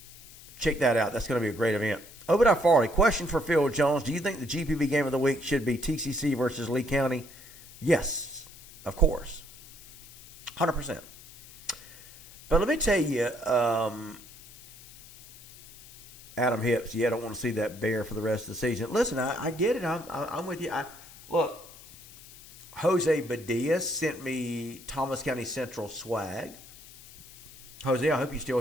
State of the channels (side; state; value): left; noise; hiss, 20 dB below the sound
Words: check that out. That's going to be a great event. Obadiah Farley, question for Phil Jones. Do you think the GPB game of the week should be TCC versus Lee County? Yes, of course. 100%. But let me tell you, Adam Hips, I don't want to see that bear for the rest of the season. Listen, I get it. I'm with you. Look, Jose Badilla sent me Thomas County Central swag. Jose, I hope you're still